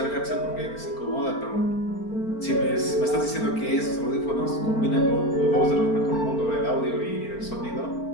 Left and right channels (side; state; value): right; late; 4.4 ms